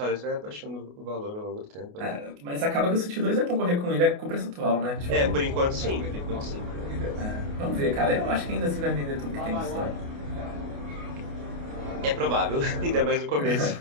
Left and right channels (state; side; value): late; left; 28 ms